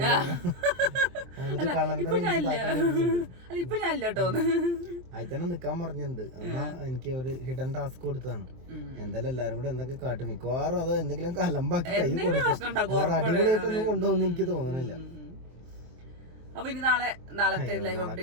ഇപ്പൊ ഞാനില്ല കേട്ടോ, അതിൽ തന്നെ നിക്കാൻ പറഞ്ഞിട്ടുണ്ട്. എന്നാ എനിക്ക് ഒരു ഹിഡൻ ടാസ്ക് കൊടുത്താണ്. എന്തായാലും എല്ലാരും കൂടെ എന്തൊക്കെ കാട്ടും. മിക്കവാറും അത് എന്തെങ്കിലും കലമ്പാക്കി കൈ കൊടുക്കും. അടിപൊളിയായിട്ടൊന്നും കൊണ്ടുപോകുന്ന എനിക്ക് തോന്നുന്നില്ല. അപ്പൊ ഇനി നാളത്തെ ലൈവ്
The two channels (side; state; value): left; late; 23 ms